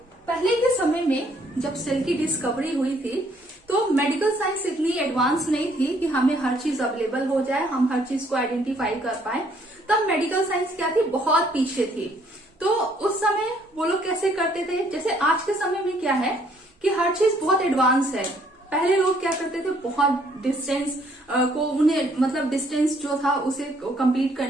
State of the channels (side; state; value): both; normal; correlation 0.65